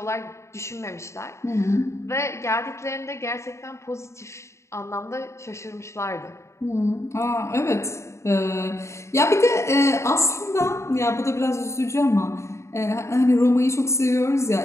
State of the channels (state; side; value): late; right; 0.14 ms